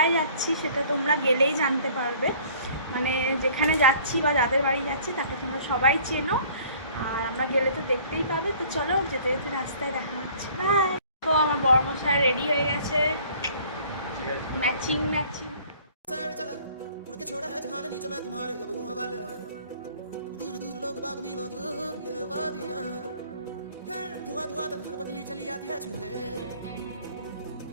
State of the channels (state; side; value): inverted; both; correlation -0.53